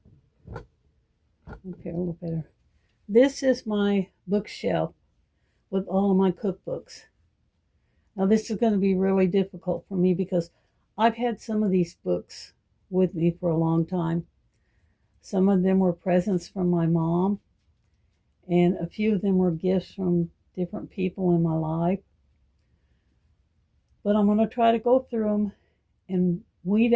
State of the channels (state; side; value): identical; both; correlation 1.00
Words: up here a little better. This is my bookshelf with all of my cookbooks. Now this is going to be really difficult for me because I've had some of these books with me for a long time. Some of them were presents from my mom, and a few of them were gifts from different people in my life. But I'm going to try to go through them and weed